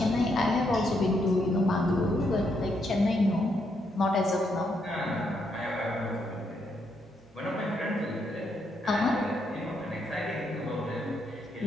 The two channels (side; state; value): both; normal; correlation 0.77